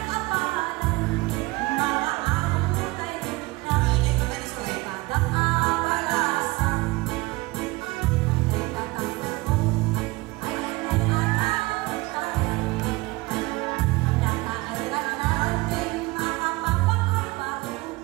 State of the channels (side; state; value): left; quieter; 22.1 dB